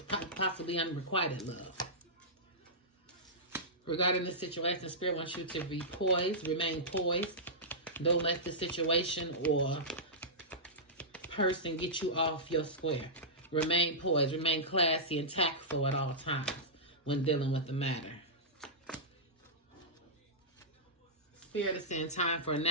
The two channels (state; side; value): normal; both; correlation -0.14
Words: possibly unrequited love. Regarding this situation, Spirit wants you to be poised, remain poised. Don't let the situation or person get you off your square. Remain poised, remain classy and tactful at all times when dealing with the matter. Spirit is saying time for a